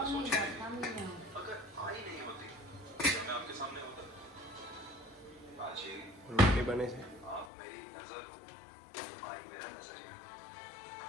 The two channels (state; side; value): drops out; right; at 7.5 s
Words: રોટી બને છે